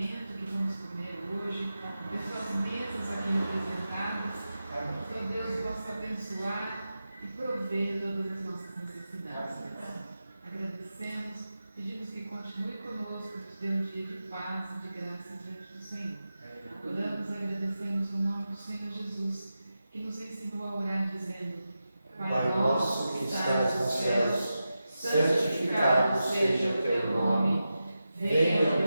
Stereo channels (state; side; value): inverted; both; correlation -0.91